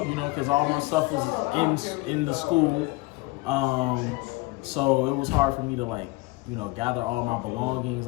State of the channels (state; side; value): quieter; right; 23.2 dB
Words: because all my stuff was in the school, so it was hard for me to gather all my belongings.